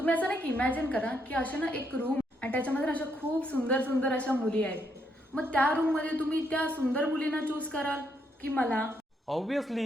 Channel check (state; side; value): normal; both; correlation 0.76